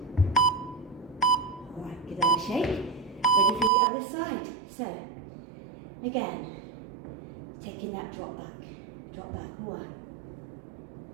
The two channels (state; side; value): drops out; left; at 3.7 s